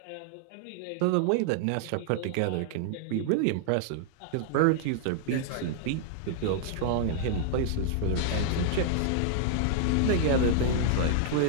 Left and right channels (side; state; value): both; different; correlation -0.01